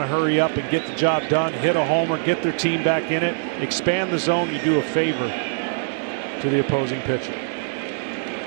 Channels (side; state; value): left; silent; digital silence